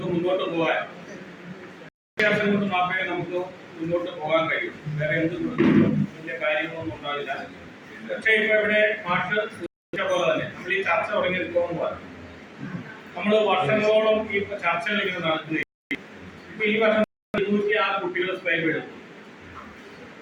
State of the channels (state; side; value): identical; both; correlation 1.00